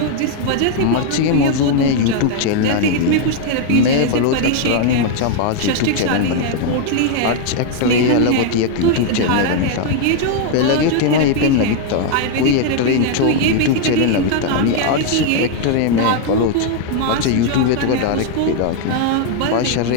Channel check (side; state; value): both; different; correlation 0.00